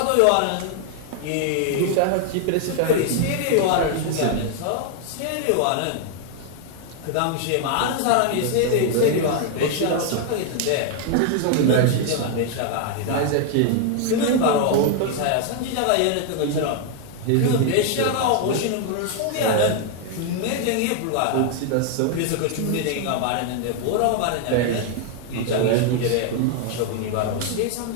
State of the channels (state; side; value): different; both; correlation 0.00